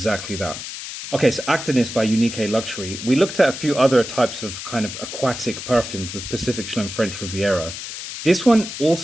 that. Okay, so Actinis by Unique Luxury. We looked at a few other types of kind of aquatic perfumes with Pacific Chill and French Riviera. This one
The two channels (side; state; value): left; noise; hiss, 9 dB below the sound